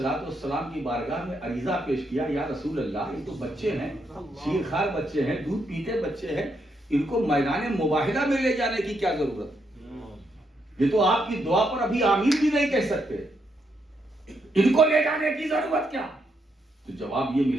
السلام کی بارگاہ میں عریضہ پیش کیا، یا رسول اللہ یہ تو بچے ہیں، شیر خوار بچے ہیں، دودھ پیتے بچے ہیں، ان کو میدان مباہلہ میں لے جانے کی کیا ضرورت؟ یہ تو آپ کی دعا پر ابھی آمین بھی نہیں کہہ سکتے، ان کو لے جانے کی ضرورت کیا؟ تو جواب یہ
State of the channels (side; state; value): both; normal; correlation 0.78